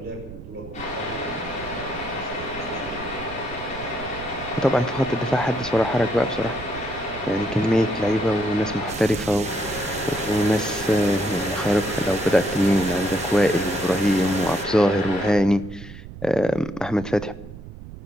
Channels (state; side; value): noise; right; rumble, 14 dB below the sound